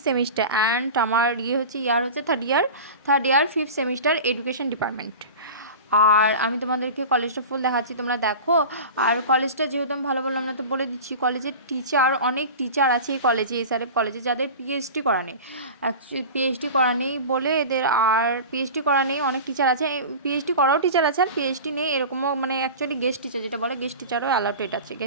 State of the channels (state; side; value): inverted; both; correlation -0.33